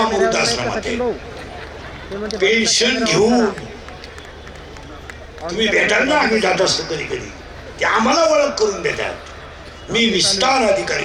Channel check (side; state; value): both; identical; correlation 1.00